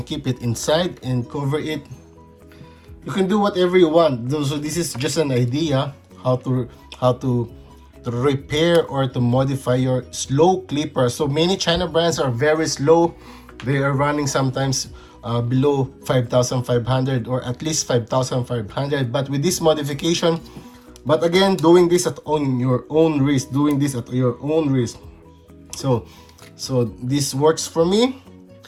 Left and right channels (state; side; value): identical; both; correlation 1.00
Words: keep it inside and cover it. You can do whatever you want. So this is just an idea how to repair or to modify your slow clipper. So many China brands are very slow. They are running sometimes below 5,500 or at least 5,500. But with this modification, but again, doing this on your own risk, So this works for me.